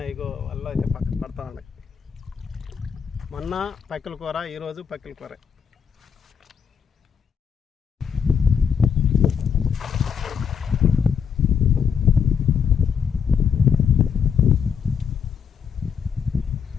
ఇగో వల్ల అయితే పడతా ఉన్నాయి. మొన్న పక్కిల కూర, ఈరోజు పక్కిల కూర.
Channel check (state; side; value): quieter; right; 7.0 dB